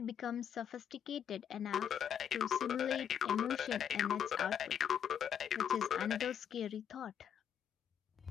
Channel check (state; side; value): quieter; right; 8.6 dB